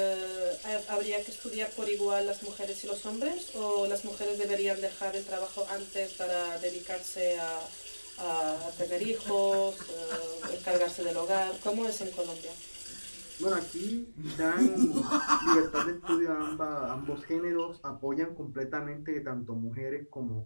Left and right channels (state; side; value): inverted; both; correlation -1.00